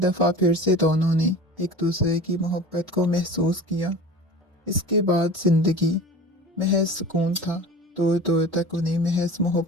फिर से दोनों ने एक दूसरे की मोहब्बत को महसूस किया। इसके बाद जिंदगी महज सुकून था। दूर दूर तक उन्हें महज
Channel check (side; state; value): both; normal; correlation 0.37